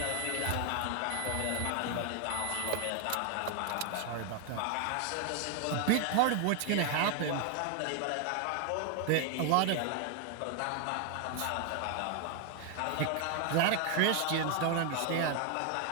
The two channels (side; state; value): both; different; correlation 0.00